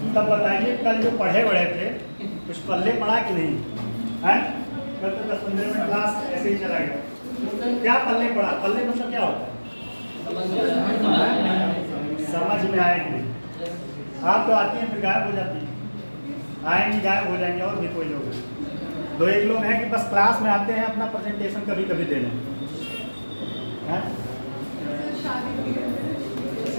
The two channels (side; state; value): both; inverted; correlation -1.00